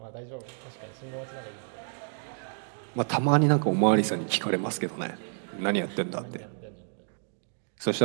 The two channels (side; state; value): left; silent; digital silence